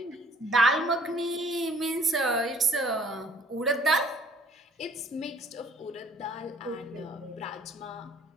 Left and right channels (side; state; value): both; normal; correlation 0.57